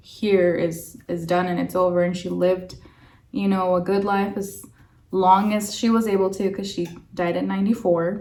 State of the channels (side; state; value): both; identical; correlation 1.00